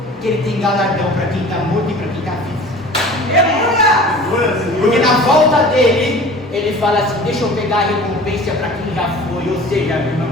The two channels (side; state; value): both; normal; correlation 0.43